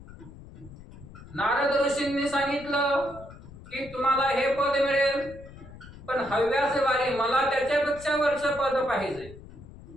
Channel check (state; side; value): noise; left; rumble, 17 dB below the sound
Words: नारद ऋषींनी सांगितलं की तुम्हाला हे पद मिळेल, पण हव्यास वारी मला त्याच्यापेक्षा वरचं पद पाहिजे.